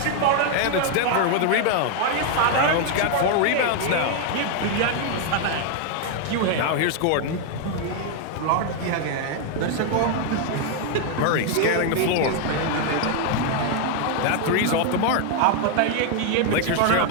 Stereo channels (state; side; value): different; both; correlation 0.00